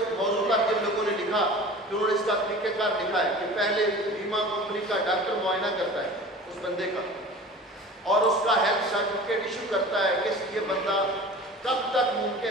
موضوع پر جن لوگوں نے لکھا کہ انہوں نے اس کا طریقہ کار لکھا ہے کہ پہلے بیمہ کمپنی کا ڈاکٹر معائنہ کرتا ہے اس بندے کا اور اس کا ہیلتھ سرٹیفکیٹ ایشو کرتا ہے کہ یہ بندہ کب تک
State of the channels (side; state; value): both; normal; correlation 0.39